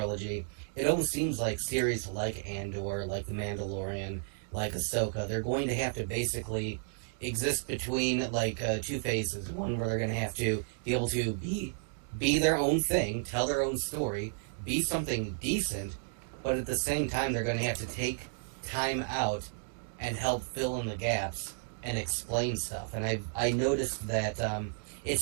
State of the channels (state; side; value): silent; left; digital silence